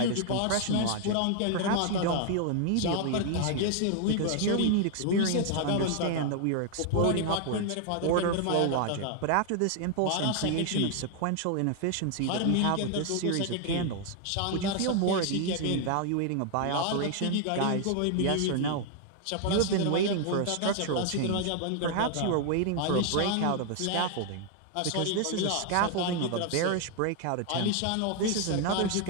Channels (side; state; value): both; different; correlation 0.00